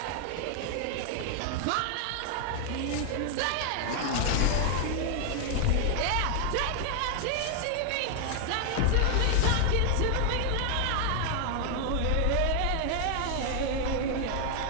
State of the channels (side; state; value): both; different; correlation 0.00